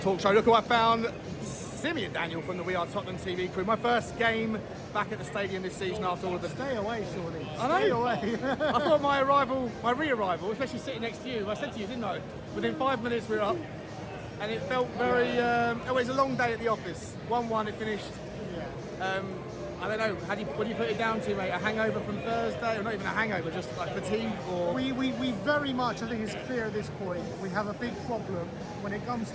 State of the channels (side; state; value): both; identical; correlation 1.00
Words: Show. Look who I found. Simeon Daniel from the We Are Tottenham TV crew. My first game back at the stadium this season after all of the... Stay away, surely. I know. Stay away. I thought my re-arrival, especially sitting next to you, I said to you, didn't I? Within 5 minutes we were up. And it felt very... it was a long day at the office. 1-1, it finished. Yeah. I don't know, what do you put it down to, mate? A hangover from Thursday? Or not even a hangover, just like fatigue? Or... We very much, I think it's clear at this point, we have a big problem when it comes